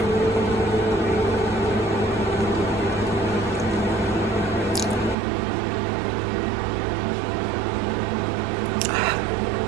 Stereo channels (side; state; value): left; drops out; at 5.2 s